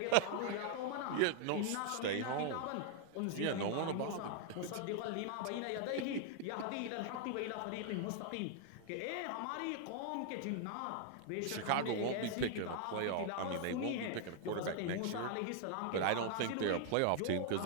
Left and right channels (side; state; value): both; different; correlation 0.00